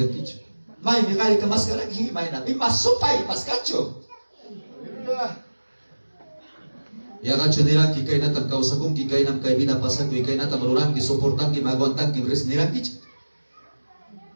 kichi may mikali ka maskara ki may na masupay paskacho. Ya gacho dirang ki kay natang kausakong ki kay nam kay binapasan ki kay natang marurang ki soportan ki maguantan ki res nirang ki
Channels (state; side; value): inverted; both; correlation -1.00